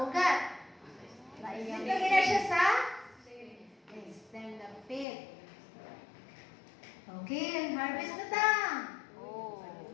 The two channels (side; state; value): right; drops out; at 5.1 s